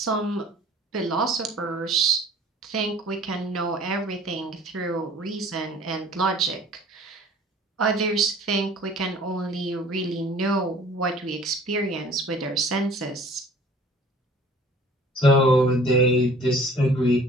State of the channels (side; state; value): both; normal; correlation 0.50